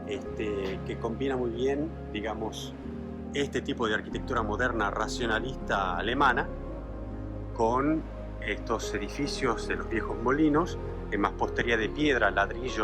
que combina muy bien, digamos, este tipo de arquitectura moderna racionalista alemana con estos edificios de los viejos molinos en mampostería de piedra,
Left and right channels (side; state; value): both; identical; correlation 1.00